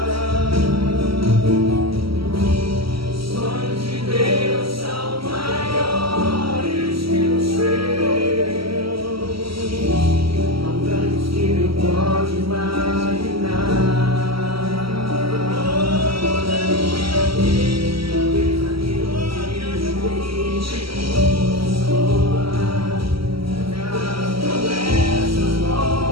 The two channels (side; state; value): left; late; 0.75 ms